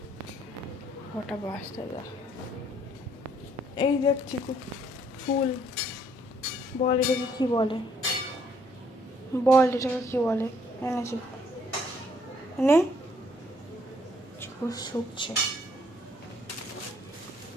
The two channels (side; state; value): both; normal; correlation 0.66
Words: ওটা বাঁচতে দা। এই দেখ চিকু ফুল, বল এটাকে কি বলে, বল এটাকে কি বলে? এনেছি নে, চিকু শুকছে।